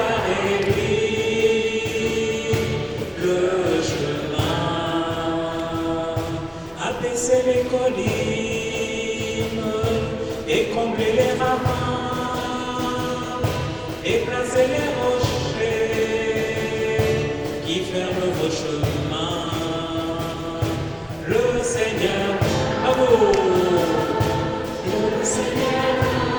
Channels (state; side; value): identical; both; correlation 1.00